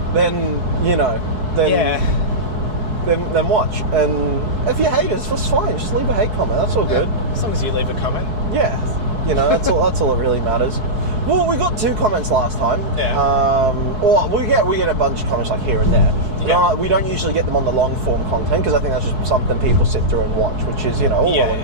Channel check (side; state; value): left; late; 4.6 ms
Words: then, then watch. And if you're haters, that's fine. Just leave a hate comment. That's all good. As long as you leave a comment. Yeah. That's all that really matters. Well, we got 2 comments last time. Yeah. Or we get a bunch of comments like here and there. Yeah. We don't usually get them on the long form content because I think that's just something people sit through and watch, which is, all well and